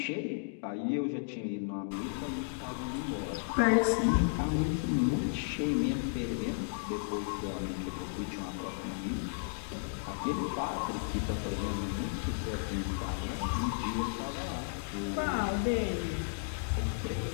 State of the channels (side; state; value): right; silent; digital silence